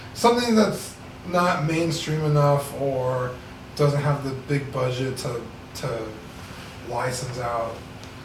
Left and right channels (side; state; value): both; identical; correlation 1.00